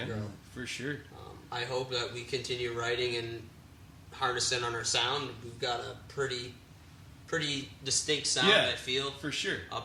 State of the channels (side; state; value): both; identical; correlation 1.00